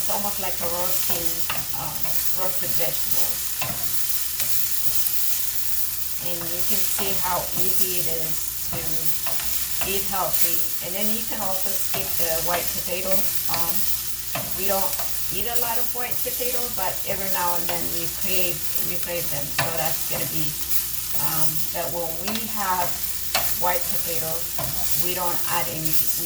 almost like a roasted vegetables. And you can see how easy it is to eat healthy. And then you can also skip the white potato. We don't eat a lot of white potato, but every now and then we crave them. So that's gonna be that when we have white potatoes, we don't add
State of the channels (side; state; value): both; identical; correlation 1.00